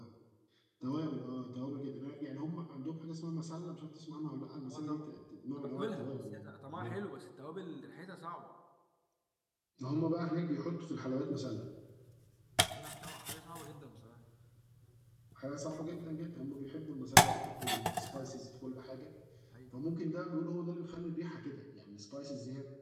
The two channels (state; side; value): identical; both; correlation 1.00